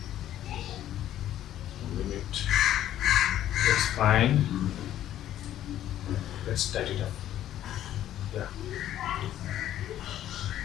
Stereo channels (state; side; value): quieter; right; 12.1 dB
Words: moving it. That's fine. Let's tighten it up. Yeah.